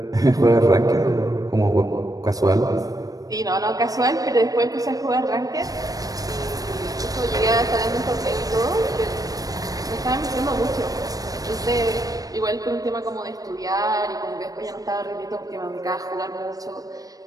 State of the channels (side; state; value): left; late; 0.18 ms